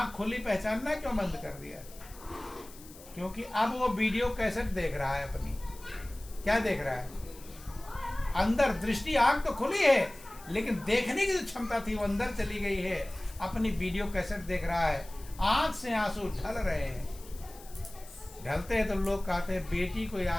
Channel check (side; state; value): left; noise; hiss, 20 dB below the sound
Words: खुली, पहचानना क्यों बंद कर दिया? क्योंकि अब वो वीडियो कैसेट देख रहा है अपनी। क्या देख रहा है? अंदर दृष्टि, आंख तो खुली है, लेकिन देखने की जो क्षमता थी वो अंदर चली गई है। अपनी वीडियो कैसेट देख रहा है, आंख से आंसू ढल रहे हैं। ढलते हैं तो लोग कहते हैं बेटी को